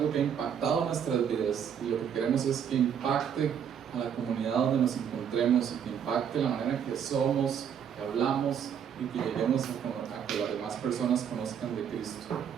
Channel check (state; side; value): quieter; left; 8.2 dB